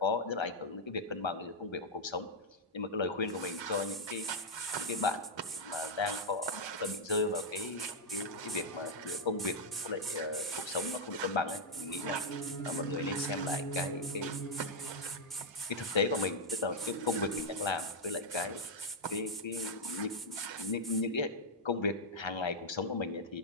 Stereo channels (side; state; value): both; normal; correlation -0.03